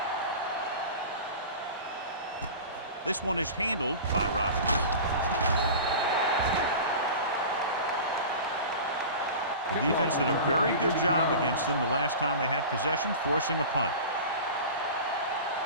This one is handled by Robbins. The defense did a very good job against them the last time they had possession, forcing a punt.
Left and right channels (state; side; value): inverted; both; correlation -0.34